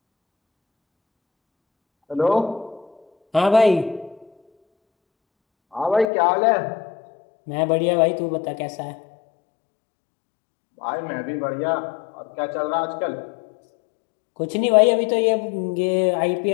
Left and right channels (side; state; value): right; drops out; at 6.1 s